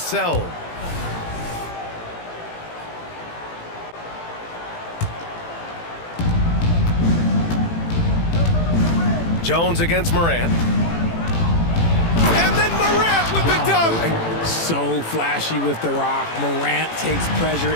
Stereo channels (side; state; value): right; late; 18 ms